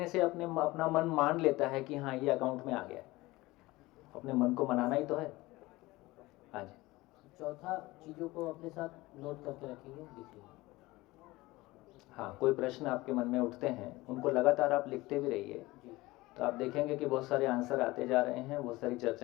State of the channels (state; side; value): quieter; right; 20.0 dB